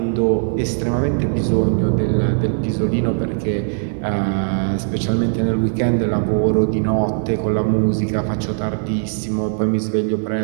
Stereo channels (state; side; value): silent; left; digital silence